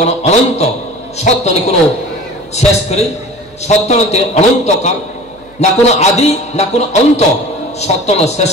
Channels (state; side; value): noise; right; hum, 27 dB below the sound